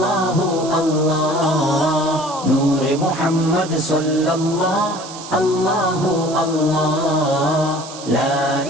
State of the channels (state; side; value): noise; right; hiss, 14 dB below the sound